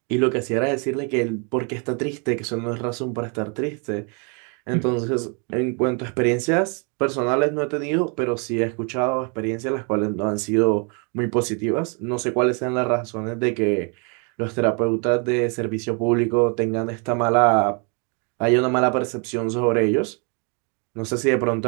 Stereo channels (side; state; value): left; quieter; 36.2 dB